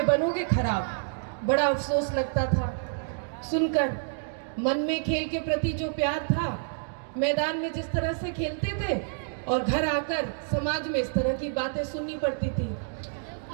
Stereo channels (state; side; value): silent; left; digital silence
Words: बनोगे खराब। बड़ा अफसोस लगता था सुनकर, मन में खेल के प्रति जो प्यार था, मैदान में जिस तरह से खेलते थे और घर आकर समाज में इस तरह की बातें सुननी पड़ती थी।